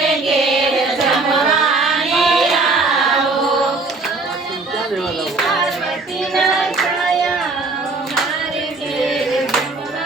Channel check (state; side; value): quieter; left; 3.6 dB